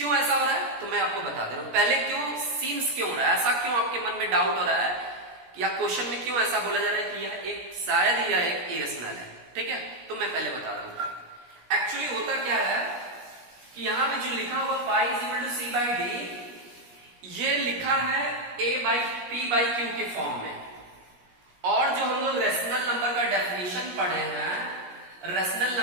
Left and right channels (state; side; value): late; left; 17 ms